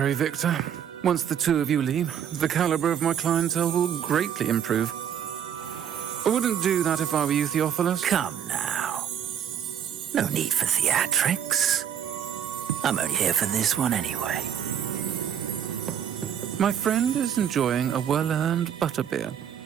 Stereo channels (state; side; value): quieter; left; 8.9 dB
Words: Victor. Once the two of you leave, the caliber of my clientele will greatly improve. I wouldn't do that if I were you, Theophilus. Come now. No need for theatrics. I'm only here for this one anyway. My friend is enjoying a well-earned butterbeer.